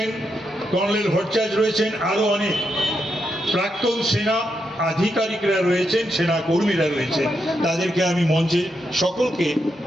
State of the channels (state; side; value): normal; both; correlation 0.83